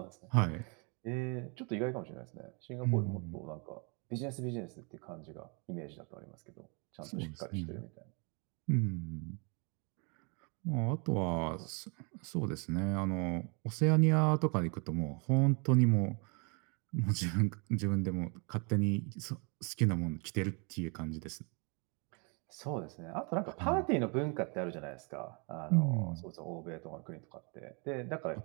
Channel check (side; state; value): left; quieter; 33.7 dB